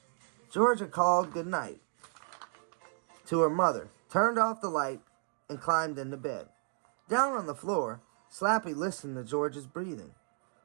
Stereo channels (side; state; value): left; silent; 56 dB below the other